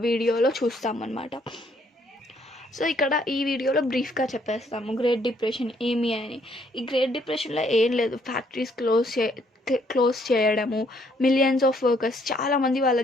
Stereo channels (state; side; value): normal; both; correlation 0.67